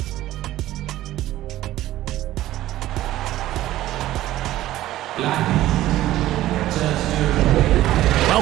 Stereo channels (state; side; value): quieter; left; 14.8 dB